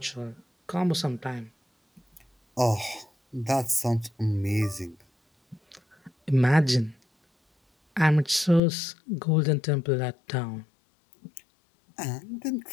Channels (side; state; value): right; drops out; at 8.6 s